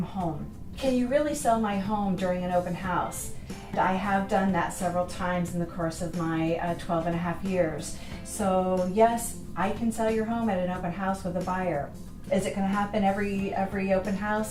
home. Can you really sell my home during an open house? I have done that several times in the course of my 12 and a half years. So yes, I can sell your home at an open house with a buyer. Is it going to happen every open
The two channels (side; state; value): both; identical; correlation 1.00